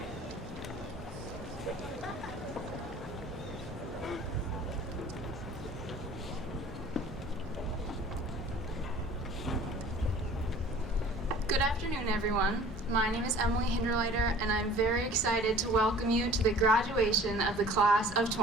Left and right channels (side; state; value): both; normal; correlation 0.48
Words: Good afternoon, everyone. My name is Emily Hinderleiter, and I'm very excited to welcome you to the graduation of the class of